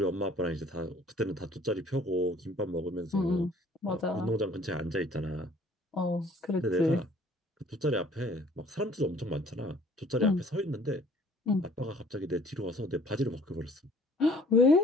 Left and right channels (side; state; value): both; normal; correlation 0.55